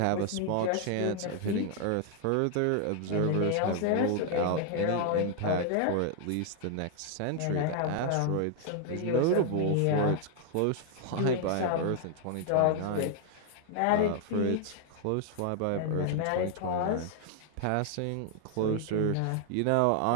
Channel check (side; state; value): both; different; correlation 0.00